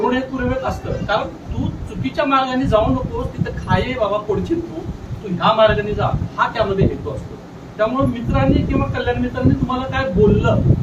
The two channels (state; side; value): identical; both; correlation 1.00